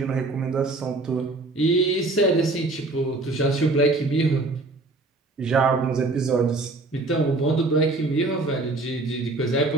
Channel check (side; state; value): left; quieter; 3.2 dB